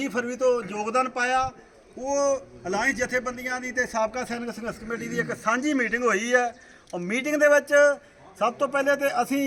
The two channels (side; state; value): both; identical; correlation 1.00